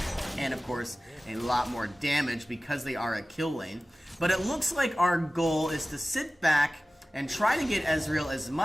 and of course a lot more damage because they are a kill lane. But it looks like our goal is to sit back and try to get Ezreal as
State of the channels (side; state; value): both; normal; correlation 0.97